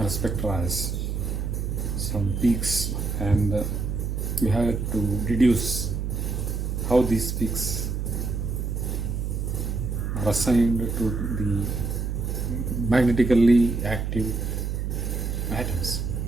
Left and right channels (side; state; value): right; noise; hum, 2 dB below the sound